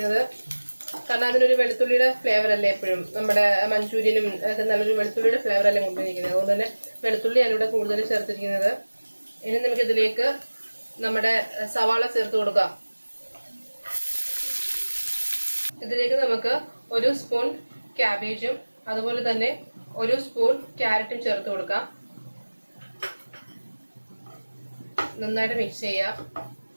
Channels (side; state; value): both; inverted; correlation -1.00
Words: കാരണം അതിനൊരു വെളുത്തുള്ളിയുടെ ഫ്ലേവർ അല്ലേ എപ്പോഴും നമ്മുടെ മഞ്ചൂരിയനും ഒക്കെ നല്ലൊരു വെളുത്തുള്ളിയുടെ ഫ്ലേവർ അല്ലേ കൊണ്ടുവന്നിരിക്കുന്നത്. അതുകൊണ്ട് തന്നെ വെളുത്തുള്ളി ഞാനിവിടെ കൂടുതൽ ചേർത്തിരിക്കുന്നത്. ഇനി നമുക്ക് ഇതിലേക്ക് നമ്മുടെ സവാള ചേർത്ത് കൊടുക്കാം. ഇതിലേക്ക് നമുക്ക് 1 സ്പൂൺ ക്യാബേജും അതുപോലെ തന്നെ 1 സ്പൂൺ ക്യാരറ്റും ചേർത്ത് കൊടുക്കാം. നന്നായിട്ട് മിക്സ് ചെയ്യാം.